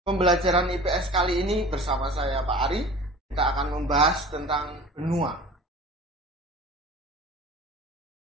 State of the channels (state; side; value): normal; both; correlation 0.40